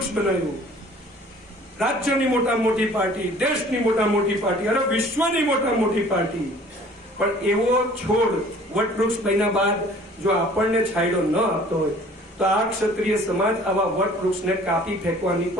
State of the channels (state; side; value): normal; both; correlation 0.51